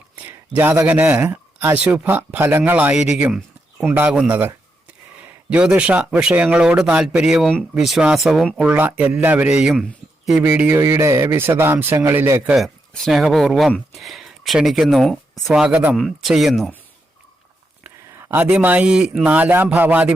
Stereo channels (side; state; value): both; normal; correlation 0.83